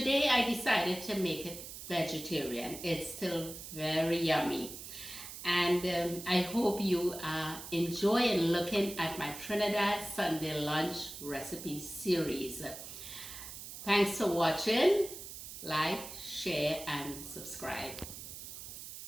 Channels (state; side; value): noise; right; hiss, 11 dB below the sound